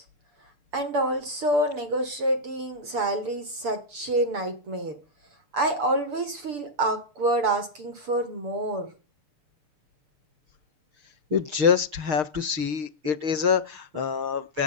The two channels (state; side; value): late; left; 6.9 ms